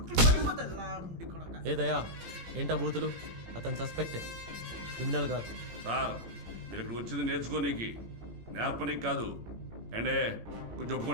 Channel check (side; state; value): left; late; 18 ms